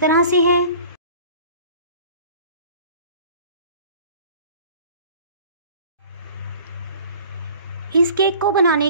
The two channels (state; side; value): inverted; both; correlation -0.47